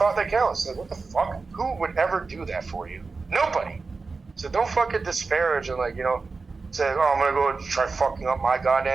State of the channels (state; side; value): quieter; left; 4.2 dB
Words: that counts. Like, what the fuck? Who would ever do that for you? Nobody. So don't fucking disparage and like, you know, say, oh, I'm gonna go try fucking up my